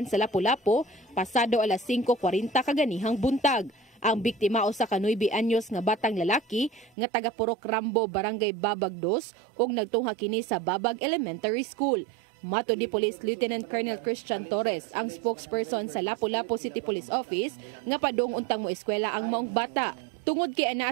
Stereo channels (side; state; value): left; drops out; at 6.9 s